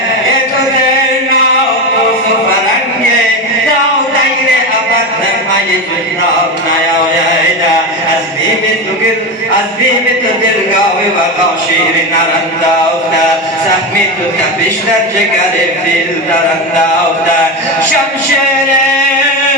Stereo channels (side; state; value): both; normal; correlation 0.18